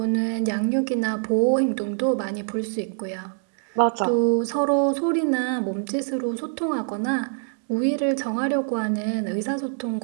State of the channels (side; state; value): left; silent; 61 dB below the other